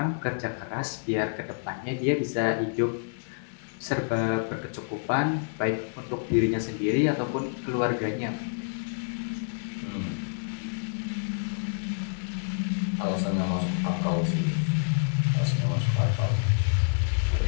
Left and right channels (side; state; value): right; silent; 59 dB below the other